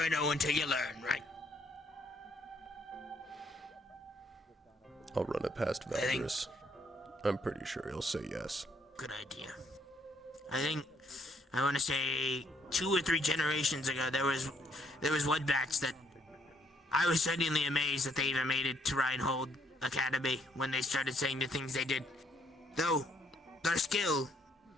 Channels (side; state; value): both; normal; correlation 0.68